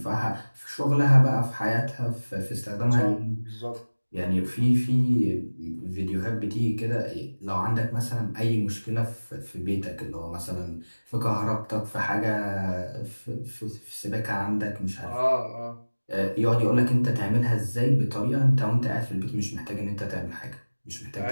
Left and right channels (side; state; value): both; inverted; correlation -1.00